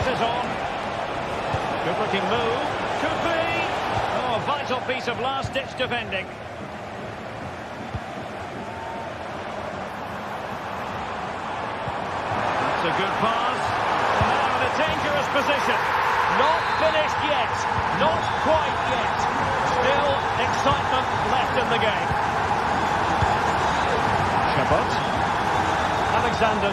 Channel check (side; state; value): both; identical; correlation 1.00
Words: is on. Good-looking move. Could be. Oh, a vital piece of last-ditch defending. A good pass. Now in a dangerous position. Not finished yet. Not quite yet. Still excitement left in the game. Chabot.